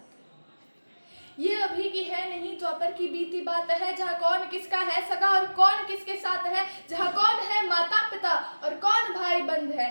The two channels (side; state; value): both; inverted; correlation -1.00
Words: है। ये अभी की है नहीं द्वापर की बीती बात है, जहाँ कौन किसका है सगा और कौन किसके साथ है। जहाँ कौन है माता पिता और कौन भाई बंध